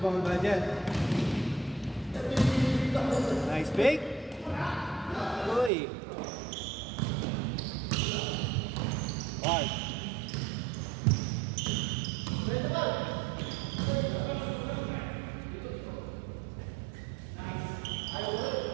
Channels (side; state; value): left; drops out; at 5.7 s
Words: by Jet. Nice pick. Uy. Right.